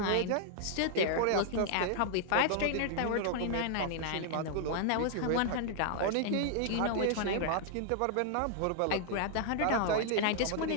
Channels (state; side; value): different; both; correlation 0.00